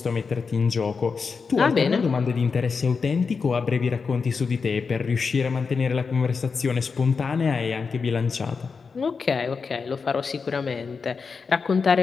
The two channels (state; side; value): quieter; right; 5.2 dB